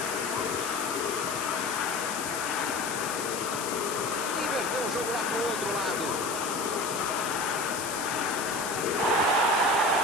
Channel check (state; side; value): noise; left; hiss, 6 dB below the sound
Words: Inverteu o jogo lá pro outro lado.